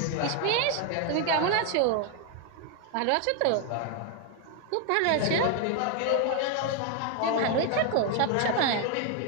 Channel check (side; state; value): both; different; correlation 0.01